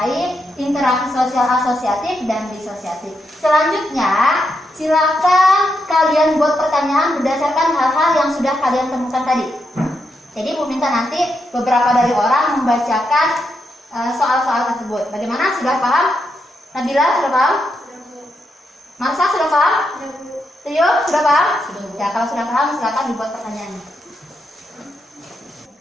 interaksi sosial asosiatif dan disosiatif. Selanjutnya, silakan kalian buat pertanyaan berdasarkan hal-hal yang sudah kalian temukan tadi. Jadi Bu minta nanti beberapa dari orang membacakan soal-soal tersebut. Bagaimana? Sudah paham? Nabila sudah paham? Marsa sudah paham? Tio sudah paham? Ya, kalau sudah paham silakan dibuat pertanyaannya.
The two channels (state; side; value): normal; both; correlation 0.82